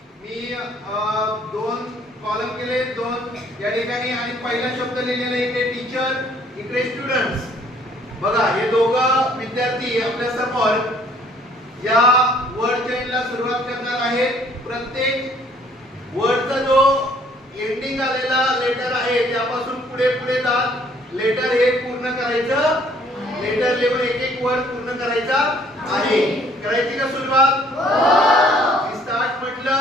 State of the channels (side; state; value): both; normal; correlation 0.60